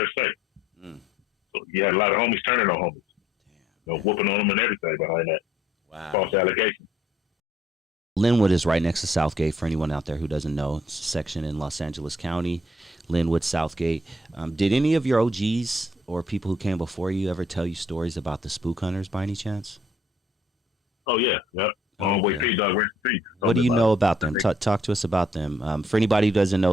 say. So you had a lot of homies turning on homies. Whooping on them and everything behind that. Wow. False allegation. Lynwood is right next to Southgate, for anyone out there who doesn't know. It's a section in Los Angeles County, Lynwood, Southgate. Did any of your OGs or people who came before you ever tell you stories about the spook hunters by any chance? Oh, yeah. Yep. Homeboy P Dog, rest in peace. What do you know about them? Talk to us about them. For anybody who doesn't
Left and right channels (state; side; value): normal; both; correlation 0.65